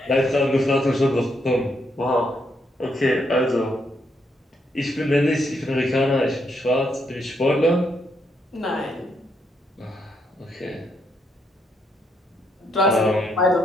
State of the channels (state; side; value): normal; both; correlation 0.76